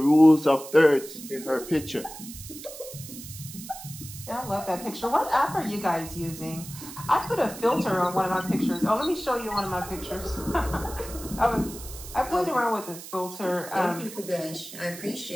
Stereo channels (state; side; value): noise; right; hiss, 13 dB below the sound